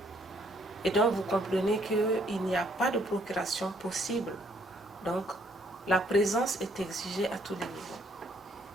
Et donc vous comprenez qu'il n'y a pas de procuration possible. Donc la présence est exigée à tous les niveaux.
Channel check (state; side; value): normal; both; correlation 0.67